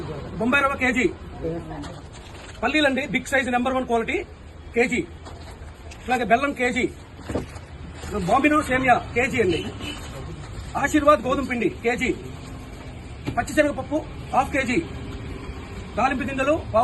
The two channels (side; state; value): both; identical; correlation 1.00